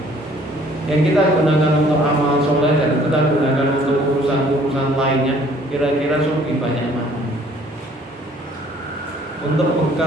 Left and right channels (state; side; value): normal; both; correlation 0.58